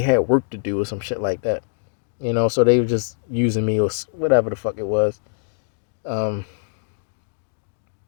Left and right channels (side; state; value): right; silent; digital silence